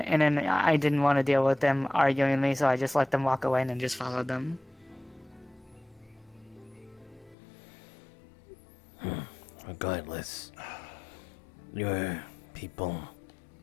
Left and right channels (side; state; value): right; drops out; at 7.4 s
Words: then I didn't want to deal with them arguing with me, so I just let them walk away and then just followed them. Regardless, your people